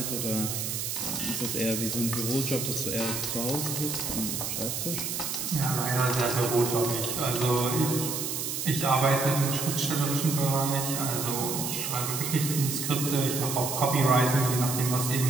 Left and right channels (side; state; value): right; noise; hiss, 3 dB below the sound